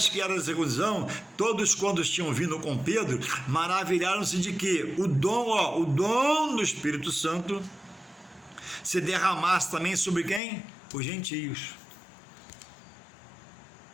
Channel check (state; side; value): drops out; right; at 10.4 s